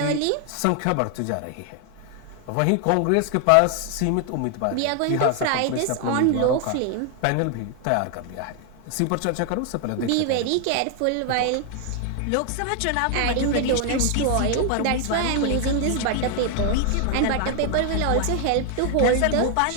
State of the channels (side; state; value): both; different; correlation 0.00